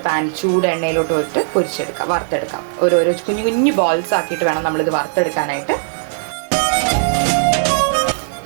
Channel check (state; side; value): silent; left; digital silence